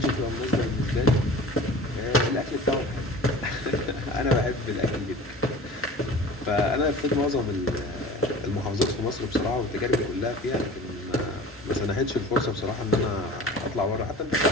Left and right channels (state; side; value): normal; both; correlation 0.41